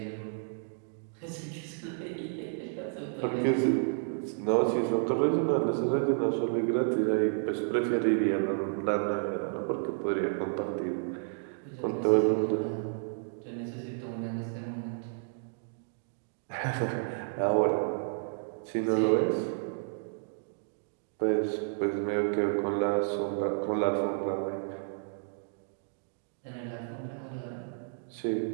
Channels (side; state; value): left; silent; digital silence